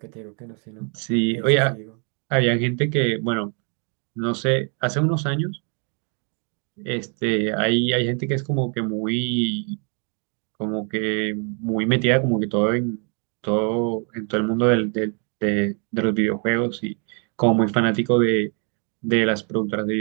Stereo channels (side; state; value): left; quieter; 39.2 dB